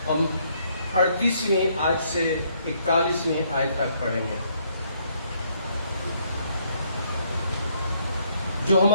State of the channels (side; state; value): both; inverted; correlation -0.69